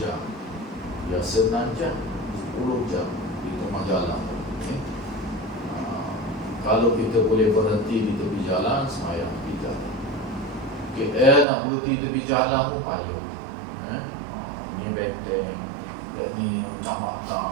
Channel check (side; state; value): left; drops out; at 11.5 s